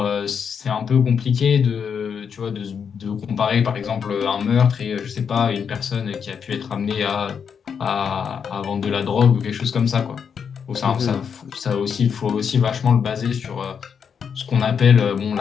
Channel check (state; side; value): quieter; right; 6.9 dB